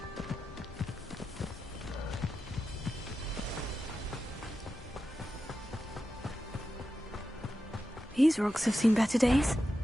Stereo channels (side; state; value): both; normal; correlation 0.90